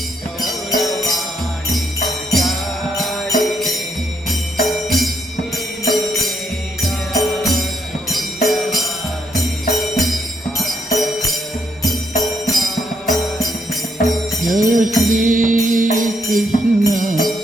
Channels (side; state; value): both; normal; correlation 0.74